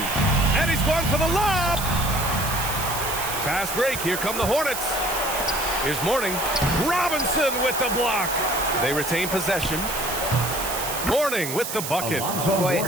And he's going for the lob. Fast break. Here come the Hornets. Here's Mourning. Robinson with the block. They retain possession. Mourning with the bucket. Boy,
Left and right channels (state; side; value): noise; right; hiss, 6 dB below the sound